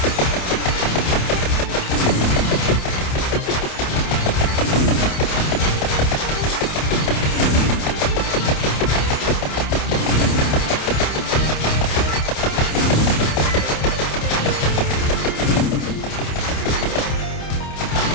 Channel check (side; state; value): right; late; 28 ms